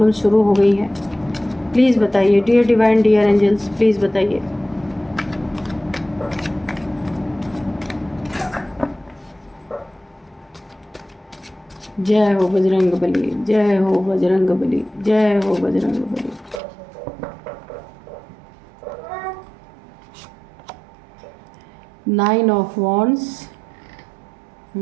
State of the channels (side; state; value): left; drops out; at 16.6 s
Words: शुरू हो गई हैं। प्लीज़ बताइए dear divine, dear angels, please बताइए। जय हो बजरंग बली, जय हो बजरंग बली, जय हो Bajrang Bali. Nine of wands,